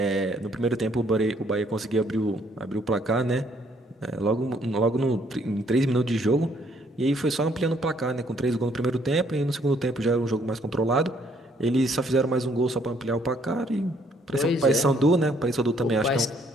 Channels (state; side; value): normal; both; correlation 0.66